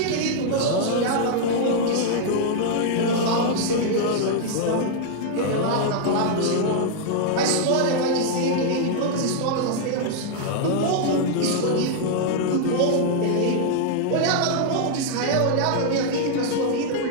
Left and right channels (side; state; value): both; different; correlation -0.01